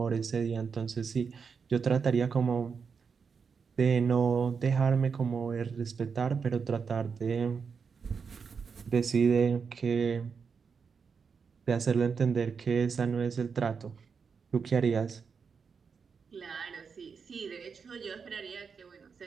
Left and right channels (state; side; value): quieter; left; 5.8 dB